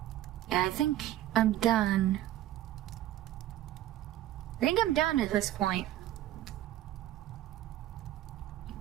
Yeah, I think I'm done. I think I'm done at this point.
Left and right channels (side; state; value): left; quieter; 13.5 dB